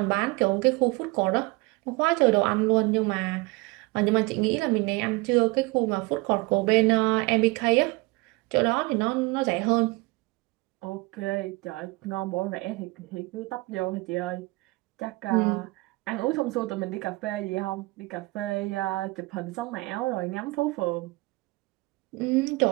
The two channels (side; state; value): left; quieter; 23.5 dB